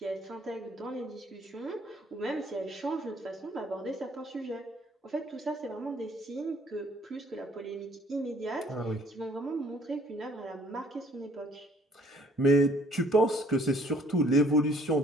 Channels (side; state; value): both; normal; correlation 0.60